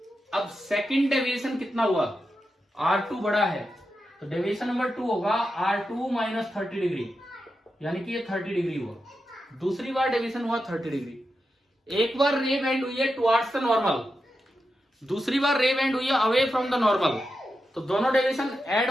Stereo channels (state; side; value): normal; both; correlation 0.88